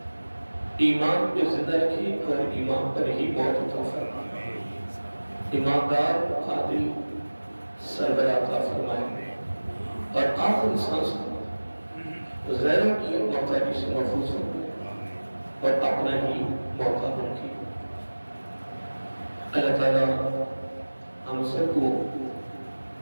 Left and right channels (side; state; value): both; inverted; correlation -1.00